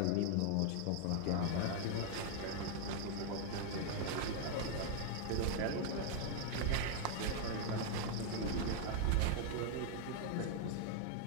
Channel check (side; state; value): both; different; correlation 0.00